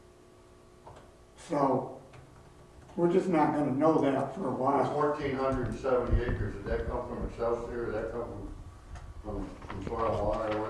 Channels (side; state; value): both; identical; correlation 1.00